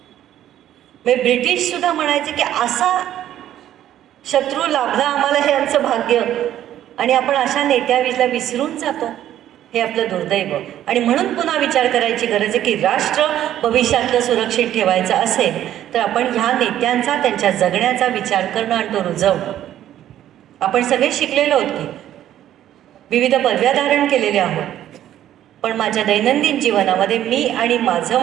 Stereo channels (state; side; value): quieter; left; 11.9 dB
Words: म्हणजे ब्रिटिश सुद्धा म्हणायचे की असा शत्रू लाभला आम्हाला, हे आमचं भाग्य. आणि आपण अशा नेत्याला विसरून जातो, हे आपलं दुर्दैव. आणि म्हणून पुन्हा विचार करायची गरज आहे की राष्ट्र भविष्यातलं सुरक्षित ठेवायचं असेल तर आपण ह्या नेत्यांचा, त्यांच्या जगण्याचा विचार करणं आणि तो रुजवणं. आपण सगळे शिकलेलो आहोत की विविध पदव्या धारण केलेल्या आहोत, पण माझ्या दैनंदिन जीवनामध्ये मी आणि माझं